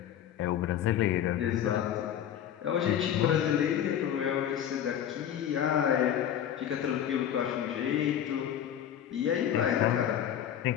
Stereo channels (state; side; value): quieter; right; 10.0 dB